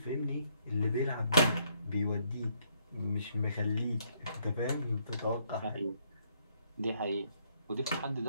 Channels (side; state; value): both; inverted; correlation -0.71